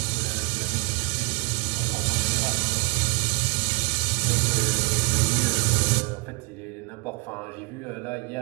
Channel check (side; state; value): left; quieter; 30.3 dB